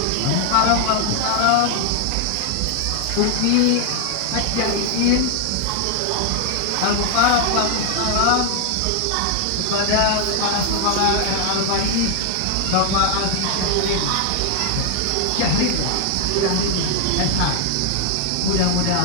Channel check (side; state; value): both; different; correlation 0.00